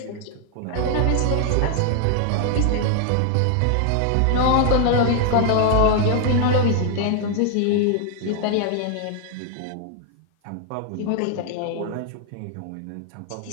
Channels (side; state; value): both; different; correlation 0.00